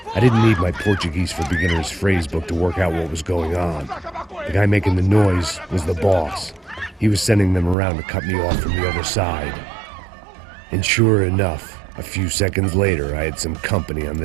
I didn't need my Portuguese for Beginners phrasebook to work out what was going on. The guy making the noise was the boss. He was sending them around to cut me off from the other side. And sure enough, a few seconds later, I had some company on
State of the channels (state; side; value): drops out; left; at 7.8 s